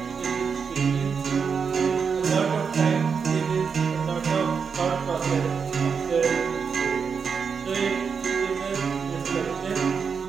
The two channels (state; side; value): quieter; left; 6.0 dB